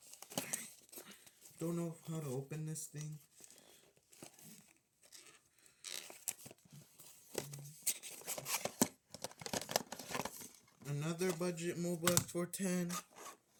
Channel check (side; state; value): both; identical; correlation 1.00